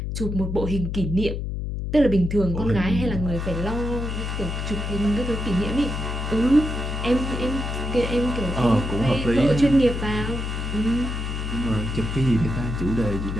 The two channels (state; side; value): noise; left; hum, 3 dB below the sound